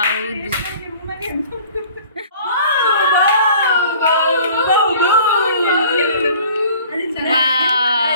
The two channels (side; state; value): both; inverted; correlation -0.49